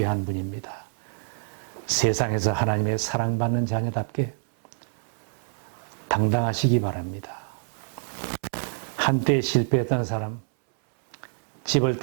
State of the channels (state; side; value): silent; left; 61 dB below the other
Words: 분입니다. 세상에서 하나님의 사랑받는 자녀답게 당당하시기 바랍니다. 한때 실패했던 사람, 집을